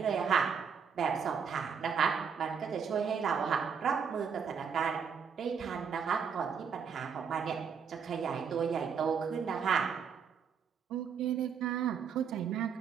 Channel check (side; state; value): left; quieter; 6.6 dB